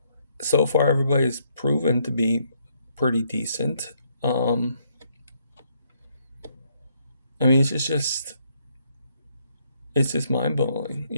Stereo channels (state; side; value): inverted; both; correlation -0.72